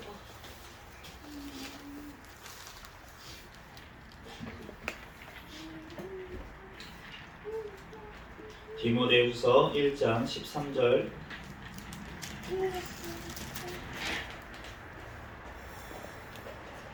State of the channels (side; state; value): both; identical; correlation 1.00